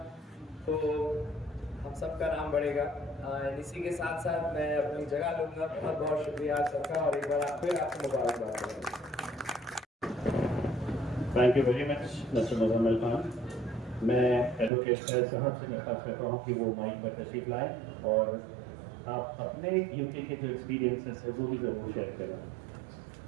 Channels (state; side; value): drops out; left; at 14.7 s